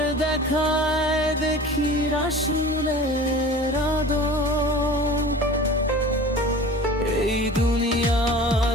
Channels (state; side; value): normal; both; correlation 0.39